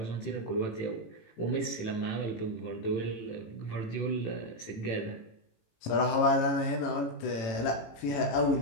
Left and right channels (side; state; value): right; late; 18 ms